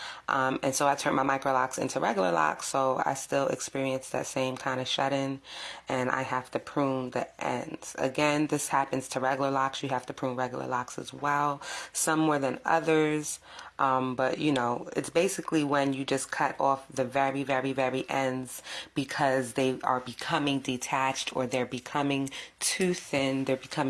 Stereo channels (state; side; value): identical; both; correlation 1.00